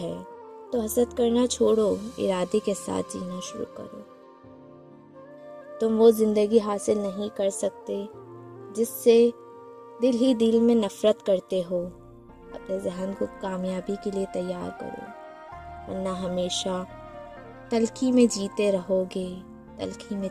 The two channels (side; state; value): both; identical; correlation 1.00